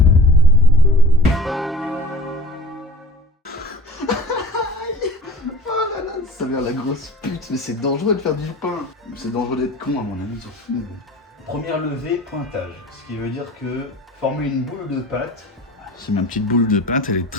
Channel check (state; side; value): normal; both; correlation 0.40